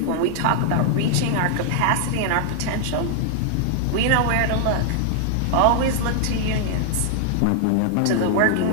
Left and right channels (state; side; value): different; both; correlation -0.01